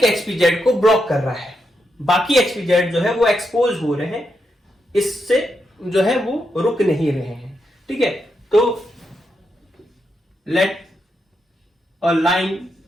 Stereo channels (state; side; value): normal; both; correlation 0.83